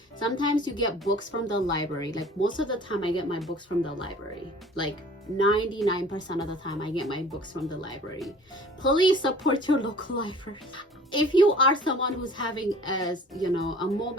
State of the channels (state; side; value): normal; both; correlation 0.48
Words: sometimes you get books from the library. Like, most of the time I get my books from the library. Like 99% of the time I get my books from the library. Please support your local library. If you are someone who's having a